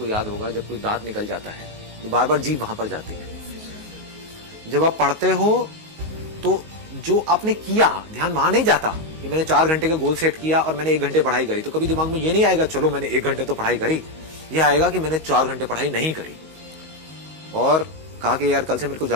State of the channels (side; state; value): left; late; 19 ms